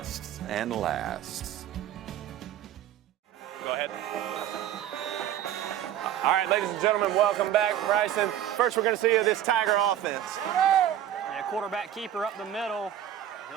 and lasts. Go ahead. All right, ladies and gentlemen, welcome back. Bryson, first we're going to see this Tiger offense. Yeah, quarterback keeper up the middle.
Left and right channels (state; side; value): quieter; left; 11.1 dB